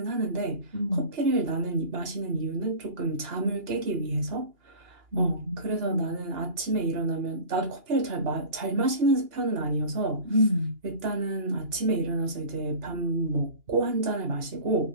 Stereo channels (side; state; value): left; late; 2.8 ms